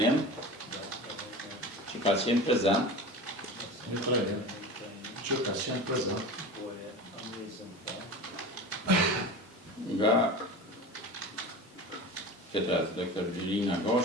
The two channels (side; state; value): both; normal; correlation 0.31